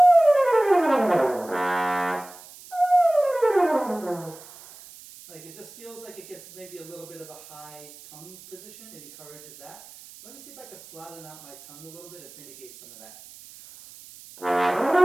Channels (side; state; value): right; noise; hiss, 19 dB below the sound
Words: Like it just feels like it gets maybe a little bit of a high tongue position. It encourages that. Let me see if I can flatten out my tongue a little bit and mitigate some of that.